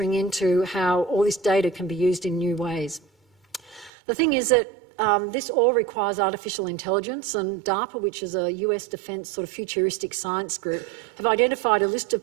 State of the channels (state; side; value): drops out; left; at 3.9 s